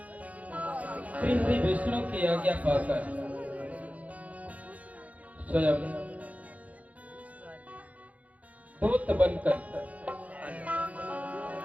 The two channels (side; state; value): left; late; 0.069 ms